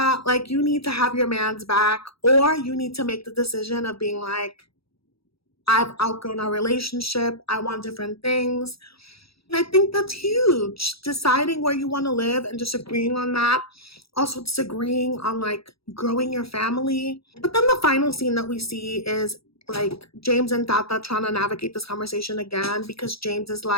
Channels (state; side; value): late; right; 0.76 ms